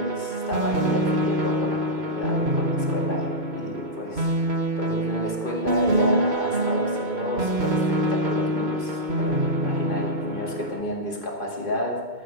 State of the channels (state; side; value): late; left; 2.2 ms